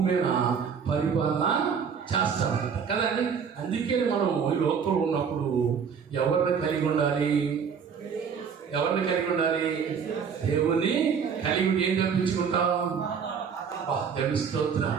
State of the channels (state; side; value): quieter; left; 6.7 dB